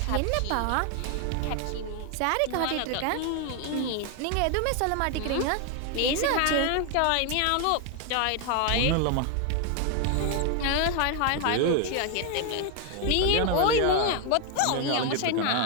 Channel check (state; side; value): different; both; correlation 0.01